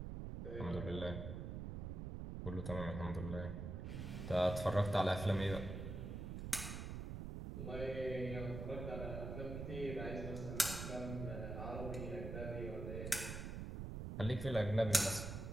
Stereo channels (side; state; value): right; noise; rumble, 5 dB below the sound